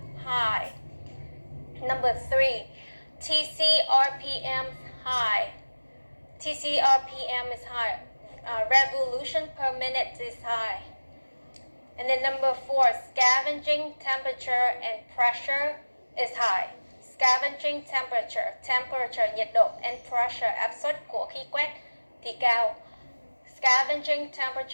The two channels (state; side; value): inverted; both; correlation -1.00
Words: high. Number 3, TC RPM high. TC RPM is high. Revolution per minute is high. And then number 4, scavenging temperature and pressure is high. Scavenging temperature nhiệt độ, and pressure áp suất của khí quét thì cao. Scavenging